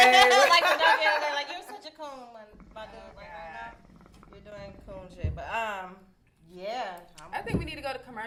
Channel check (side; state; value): both; identical; correlation 1.00